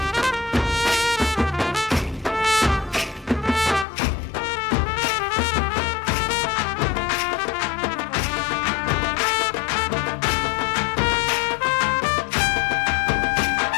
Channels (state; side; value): drops out; right; at 3.9 s